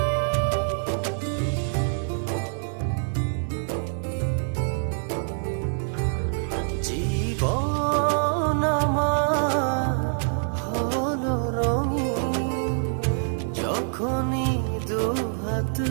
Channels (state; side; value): silent; left; digital silence